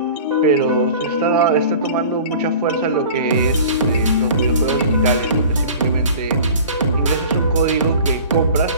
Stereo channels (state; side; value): inverted; both; correlation -0.42